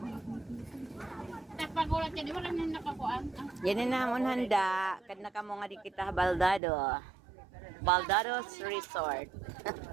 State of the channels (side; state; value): left; drops out; at 6.6 s